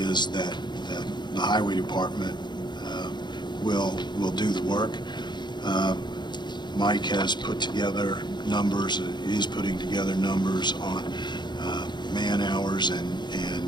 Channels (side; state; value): right; late; 0.21 ms